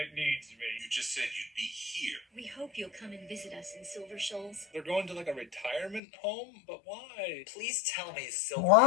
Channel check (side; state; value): right; drops out; at 6.0 s